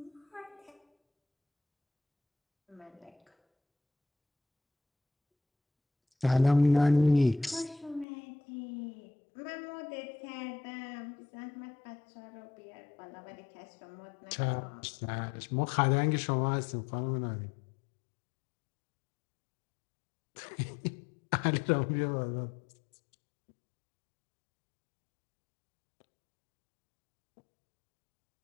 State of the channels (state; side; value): drops out; right; at 8.1 s